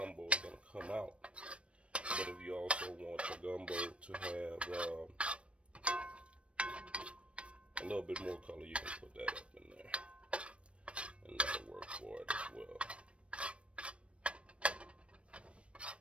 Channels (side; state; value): left; late; 0.060 ms